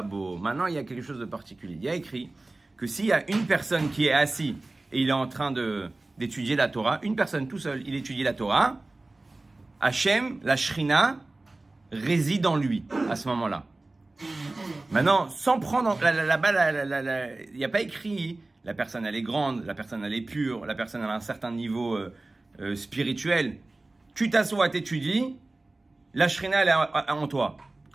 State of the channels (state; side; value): quieter; left; 3.0 dB